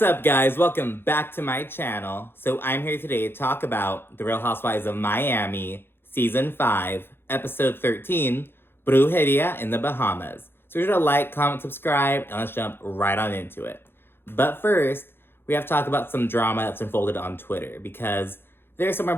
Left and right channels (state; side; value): late; right; 0.11 ms